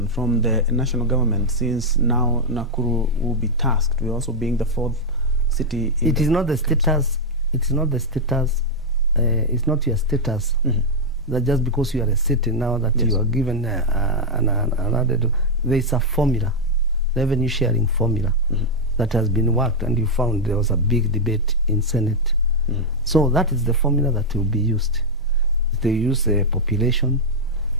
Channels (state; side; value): normal; both; correlation -0.01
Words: from the national government, since now Nakuru will be tasked with also being the fourth city? It is not the status. It's not the status. It's not your status. That just because you are a city now that you are given an added. There is a formula, revenue sharing formula, that has been worked, and you found there was a big debate in Senate. So that is the formula that will be used. They use population,